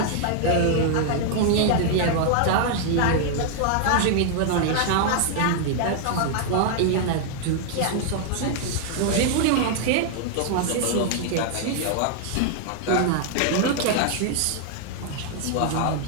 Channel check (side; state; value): both; different; correlation 0.00